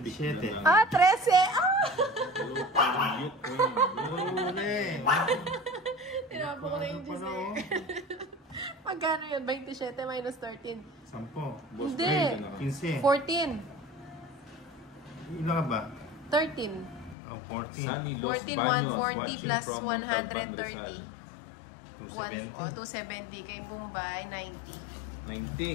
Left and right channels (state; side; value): drops out; right; at 17.2 s